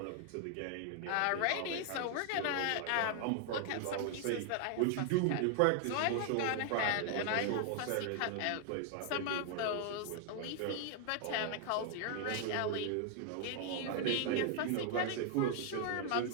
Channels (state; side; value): different; both; correlation 0.00